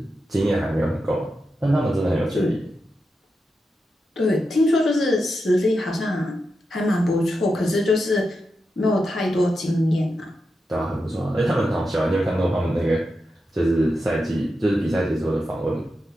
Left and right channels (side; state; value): both; normal; correlation 0.88